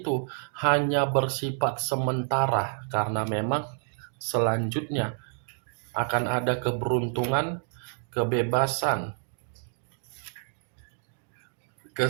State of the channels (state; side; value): silent; left; digital silence